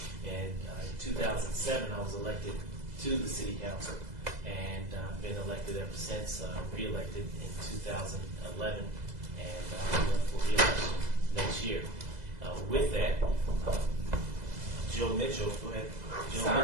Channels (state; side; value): late; left; 2.0 ms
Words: And in 2007, I was elected to the city council, and I've been elected ever since, re-elected in 2011, and I'm running for re-election next year. With that, Joe Mitchell, go ahead. Joe